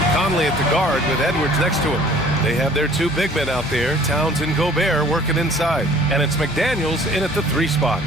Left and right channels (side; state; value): both; normal; correlation 0.52